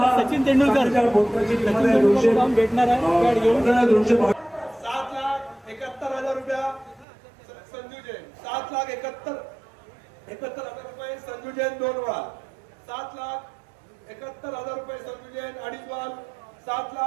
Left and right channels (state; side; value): drops out; left; at 7.1 s